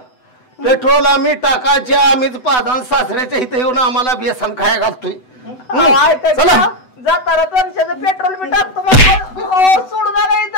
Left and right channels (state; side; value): late; right; 8.0 ms